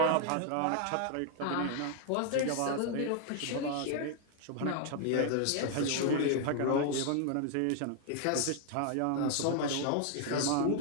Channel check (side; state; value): both; different; correlation 0.00